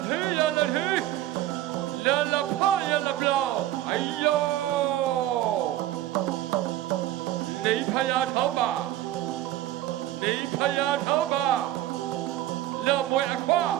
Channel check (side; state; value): left; quieter; 14.1 dB